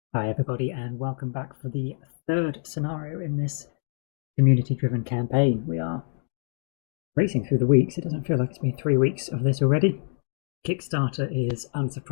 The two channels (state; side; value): silent; right; 61 dB below the other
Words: Hi everybody and welcome back for the third scenario in this community-driven campaign. We are racing through the weeks. It doesn't feel like it's been 3 weeks of this already. Kickstarter is